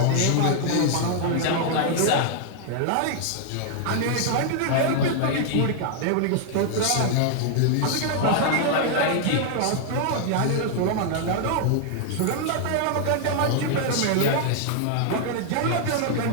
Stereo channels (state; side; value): different; both; correlation 0.00